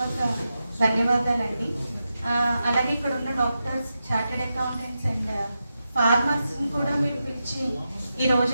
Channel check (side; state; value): both; inverted; correlation -0.89